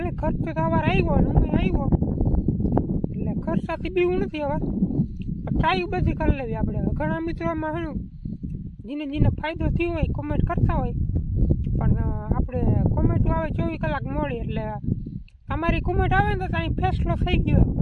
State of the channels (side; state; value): both; identical; correlation 1.00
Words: ખર્ચ તો સવારે આવ્યો ને હું આવ્યો એટલે ખર્ચાથી બીવું નથી હવે ટ્રાય બધી કરી લેવી આપણે ઘણા મિત્રોમાં શું જેને ફાયદો થયો હોય કોમેન્ટ કરતા હોય પણ આપણે કોમેન્ટો આવે 24 કલાક મોડી એટલે તમારી કોમેન્ટ આવે ને તો ત્યાં ફેસલો થઈ ગયો